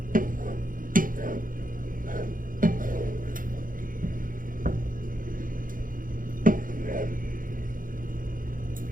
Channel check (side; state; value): left; late; 0.40 ms